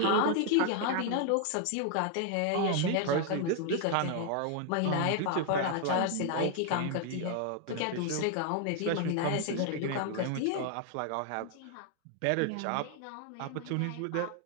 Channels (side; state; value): both; different; correlation 0.00